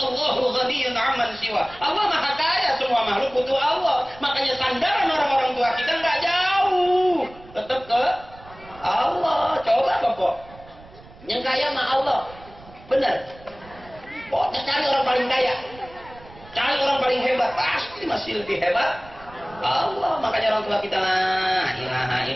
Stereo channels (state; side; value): noise; right; rumble, 21 dB below the sound